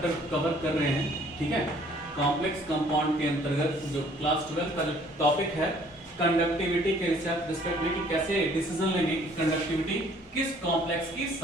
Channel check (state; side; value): normal; both; correlation 0.58